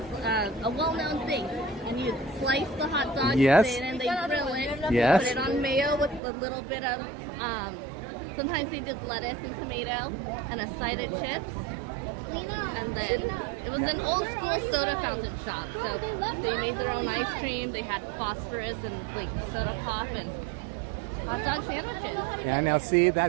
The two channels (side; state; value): left; drops out; at 6.2 s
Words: a well-known thing. And you slice the hot dog Yes. thin, and they grill it. Yes. Put it on mayo with a little bit of, sometimes they did lettuce and tomato, and a side of chips. And then it was an old school soda fountain shop. So they made their own ice cream. They had phosphorus and like soda pop and hot dog sandwiches. Yeah, now see,